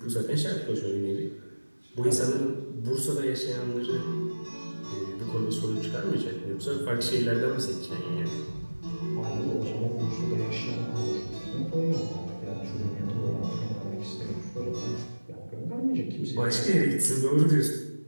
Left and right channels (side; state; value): both; inverted; correlation -1.00